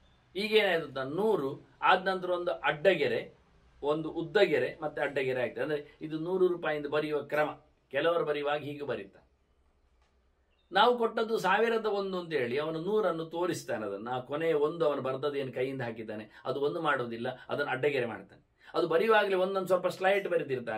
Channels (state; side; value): identical; both; correlation 1.00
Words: ಈಗೇನಾಯ್ತು, 100 ಆದ ನಂತರ ಒಂದು ಅಡ್ಡಗೆರೆ, ಒಂದು ಉದ್ದಗೆರೆ ಮತ್ತೆ ಅಡ್ಡಗೆರೆ ಆಗ್ತದೆ. ಅಂದರೆ ಇದು 100 ರೂಪಾಯಿಂದ ಬರೆಯುವ ಕ್ರಮ. ಕೆಲವರು ಬರೆಯುವಾಗ ಹೀಗೆ ಬರೀತಾನೆ. ನಾವು ಕೊಟ್ಟದ್ದು 1001 ಅಂತ ಹೇಳಿ ಅವನು 100 ತೋರಿಸ್ತಾನೆ. ಅದನ್ನು ಆ ಕೊನೆಯ 1 ಅವನು ಬರೆದದೇನು ಕೈಯಿಂದ ಹಾಕಿದ್ದಾನೆ ಅದು 1 ಮಾಡುವುದಿಲ್ಲ, ಅದನ್ನು ಅಡ್ಡಗೆರೆ ಮಾಡ್ತಾನೆ. ಅದು ಬರೆಯುವಾಗಲೇ ಒಂದೊಂದು ಸ್ವಲ್ಪ ಸ್ಲೈಟ್